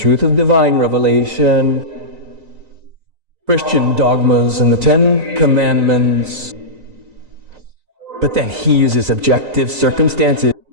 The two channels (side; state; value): left; late; 3.9 ms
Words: of divine revelation, Christian dogmas, and the 10 Commandments. But then he uses objective circumstances.